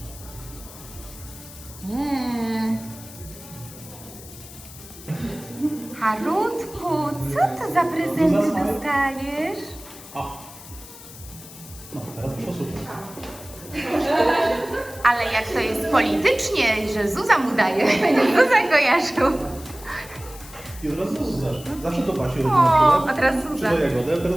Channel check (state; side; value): noise; left; hiss, 17 dB below the sound